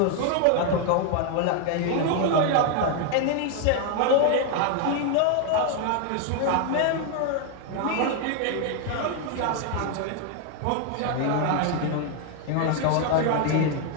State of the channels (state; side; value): different; both; correlation 0.01